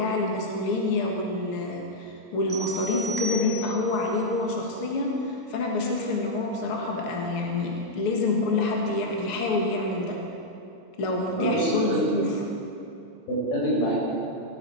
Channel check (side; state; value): both; normal; correlation -0.04